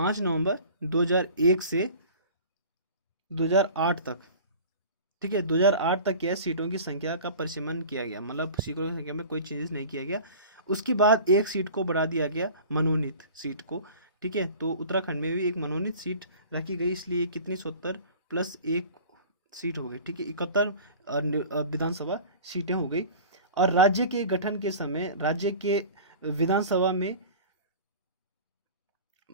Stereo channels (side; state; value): both; inverted; correlation -0.41